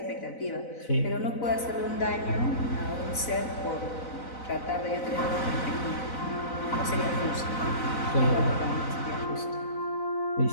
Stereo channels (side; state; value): right; late; 4.0 ms